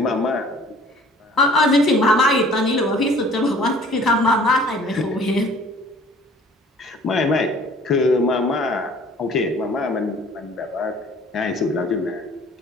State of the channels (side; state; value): both; normal; correlation 0.52